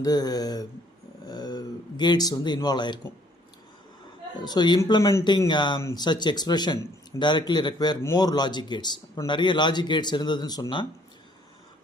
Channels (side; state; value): both; normal; correlation 0.62